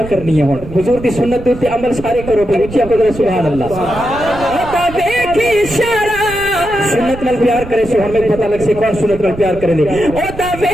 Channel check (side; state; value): right; noise; rumble, 12 dB below the sound